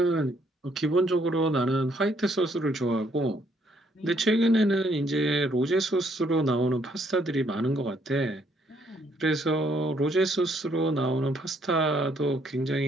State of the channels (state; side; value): normal; both; correlation 0.68